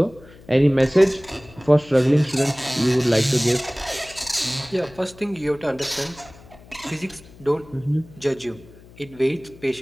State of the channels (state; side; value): noise; left; hum, 22 dB below the sound